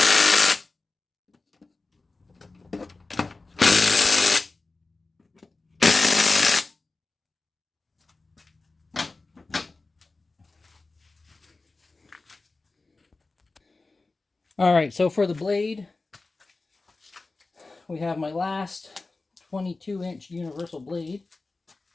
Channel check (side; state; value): right; quieter; 3.5 dB